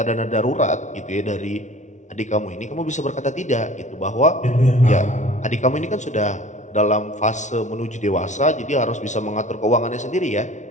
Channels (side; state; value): right; late; 0.35 ms